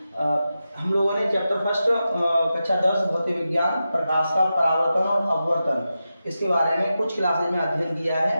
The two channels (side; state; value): both; inverted; correlation -0.91